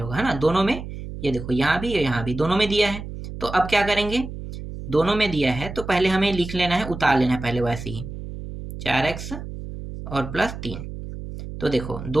होगा, है ना, दोनों में। ये देखो यहाँ भी यहाँ भी दोनों में दिया है। तो अब क्या करेंगे, दोनों में दिया है तो पहले हमें लिख लेना है, उतार लेना है पहले वैसे ही, 4x और प्लस 3। तो देखो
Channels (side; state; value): right; noise; hum, 9 dB below the sound